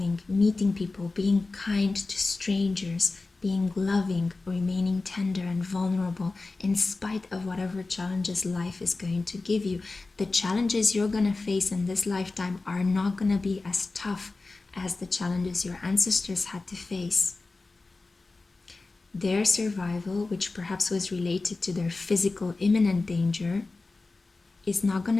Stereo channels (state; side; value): quieter; right; 3.5 dB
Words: meeting people, being kind to strangers, being loving, remaining tender and vulnerable in spite of whatever challenges life is going to give you. The challenges you're going to face in this lifetime are not going to be as tough as the challenges your ancestors had to face. Their survival, which perhaps was related to their physical imminent danger, is not going